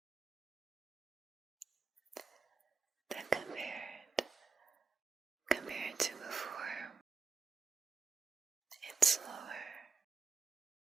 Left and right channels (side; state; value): left; quieter; 4.9 dB